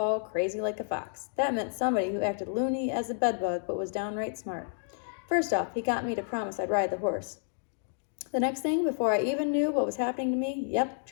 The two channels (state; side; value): silent; right; digital silence